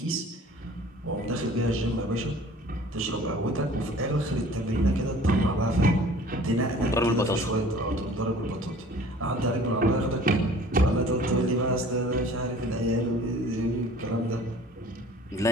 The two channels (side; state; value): both; normal; correlation 0.48